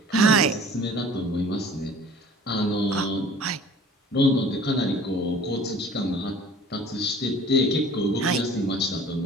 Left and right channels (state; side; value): normal; both; correlation 0.47